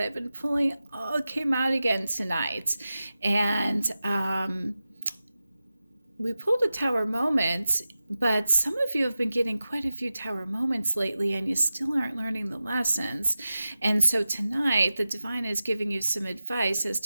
I've been pulling all came out again tonight. And we pulled a tower moment, but some of you have been getting quite a few tower moments lately and you still aren't learning the lessons. And so tonight, the divine is giving you some advice as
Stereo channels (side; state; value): both; inverted; correlation -0.94